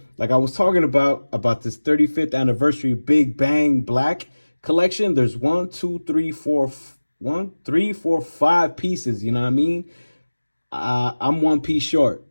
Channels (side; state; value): both; inverted; correlation -1.00